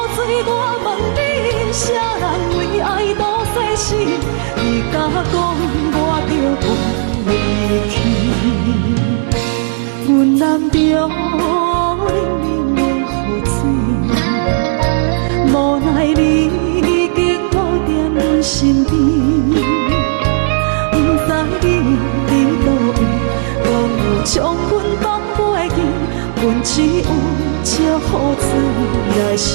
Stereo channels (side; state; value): left; silent; digital silence